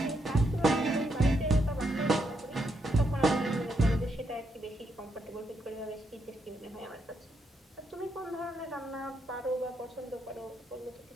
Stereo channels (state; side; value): normal; both; correlation 0.78